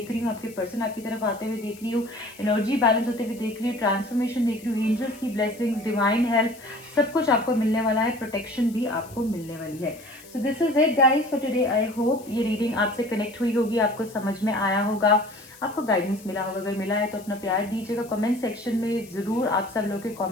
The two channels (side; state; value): left; noise; hiss, 21 dB below the sound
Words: रही हूँ, आपके पर्सन आपकी तरफ आते हुए देख रही हूँ, एनर्जी बैलेंस होते हुए देख रही हूँ, ट्रांसफॉर्मेशन देख रही हूँ, एंजल्स की ब्लेसिंग्स, डिवाइन हेल्प, सब कुछ आपको मिलने वाला है, प्रोटेक्शन भी आपको मिलने वाली है। So this is it guys for today. I hope ये रीडिंग आपसे कनेक्ट हुई होगी, आपको समझ में आया होगा, आपको गाइडेंस मिला होगा। अगर मिला है तो अपना प्यार दीजिएगा कमेंट सेक्शन में, ज़रूर आप सब लोग के